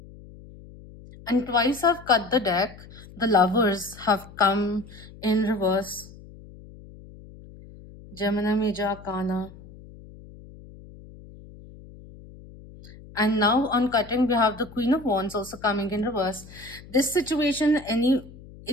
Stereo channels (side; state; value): left; noise; hum, 19 dB below the sound